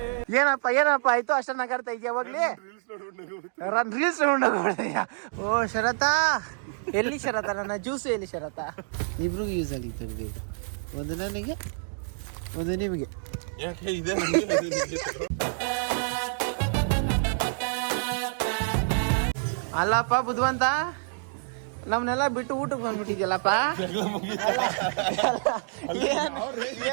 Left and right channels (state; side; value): silent; left; digital silence